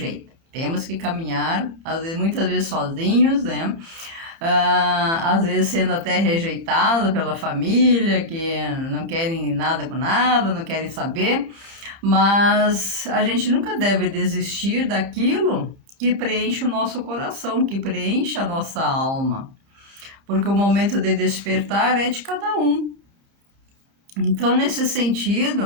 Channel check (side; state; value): left; late; 30 ms